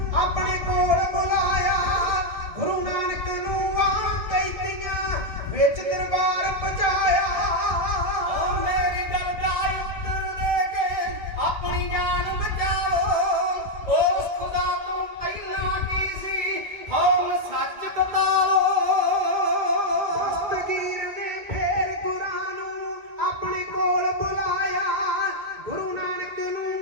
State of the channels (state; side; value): late; left; 1.7 ms